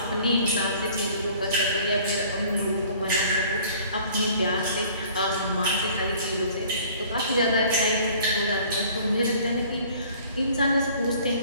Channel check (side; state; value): both; inverted; correlation -0.52